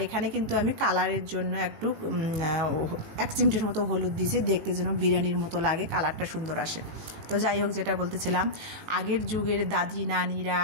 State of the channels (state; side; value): late; left; 18 ms